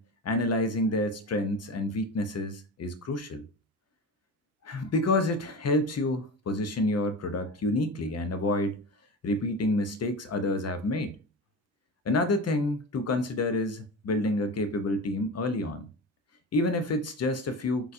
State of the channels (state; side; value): normal; both; correlation 0.28